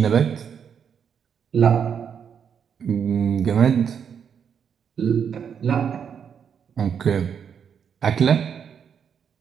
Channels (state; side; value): quieter; left; 7.5 dB